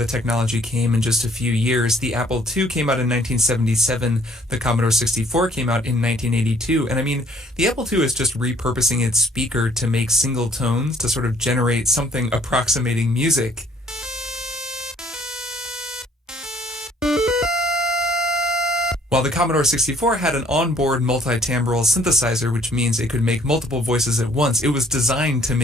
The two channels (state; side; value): normal; both; correlation 0.60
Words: technology came in just a few years. The Apple II came out in 1977, the Commodore 64 came out in 1982, and I mean, the Apple II is just repurposing its speaker to make single tones to sort of generate something approximating music. While the Commodore 64 had an onboard multi-timbral synthesizer, which means it could make multiple voices at once, it was designed to